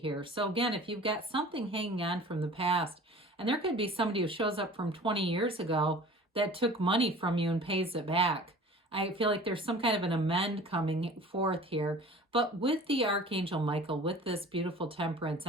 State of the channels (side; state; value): both; normal; correlation 0.44